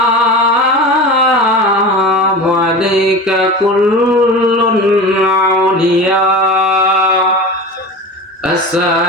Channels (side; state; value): both; normal; correlation 0.31